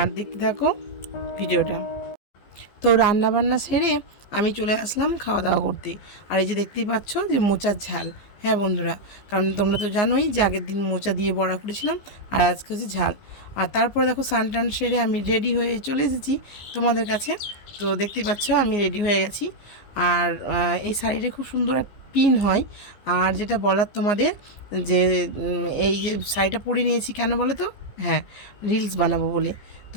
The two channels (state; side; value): late; right; 15 ms